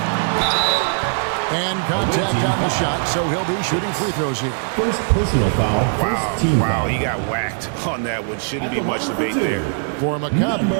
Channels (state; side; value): silent; left; 66 dB below the other